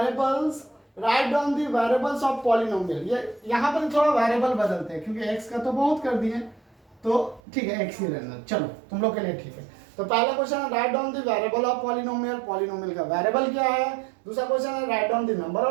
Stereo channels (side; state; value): left; drops out; at 7.4 s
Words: right on the variables of polynomial. ये यहाँ पर थोड़ा वेरिएबल बदलते हैं क्योंकि x का तो बहुत कर दिए, तो ठीक है x ही रहना, चलो तुम लोग के लिए ठीक है। तो पहला क्वेश्चन है right on the variable of polynomial, polynomial का वेरिएबल क्या है। दूसरा क्वेश्चन है right on the number